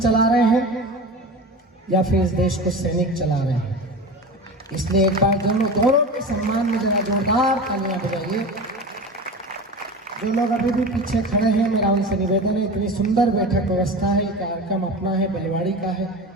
रहे हैं या फिर इस देश को सैनिक चला रहे हैं। इसलिए एक बार दोनों के सम्मान में जरा जोरदार तालियां बजाइए। जो लोग अभी भी पीछे खड़े हैं, मेरा उनसे निवेदन है, इतनी सुंदर बैठक व्यवस्था है, कार्यक्रम अपना है, बलिवाड़ी का है।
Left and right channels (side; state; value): both; normal; correlation 0.30